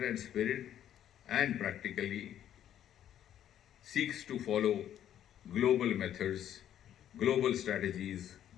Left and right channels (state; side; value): quieter; right; 10.8 dB